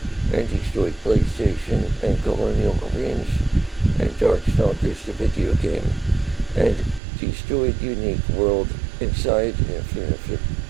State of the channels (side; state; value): left; drops out; at 7.0 s